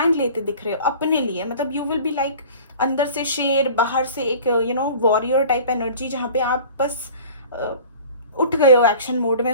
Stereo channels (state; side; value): inverted; both; correlation -0.43